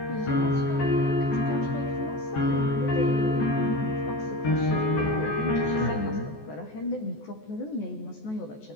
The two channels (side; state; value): right; late; 14 ms